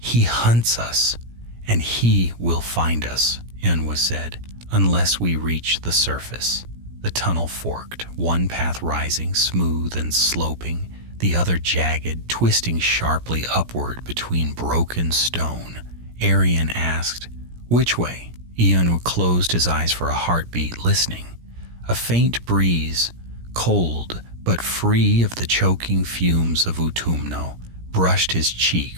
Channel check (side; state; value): left; late; 17 ms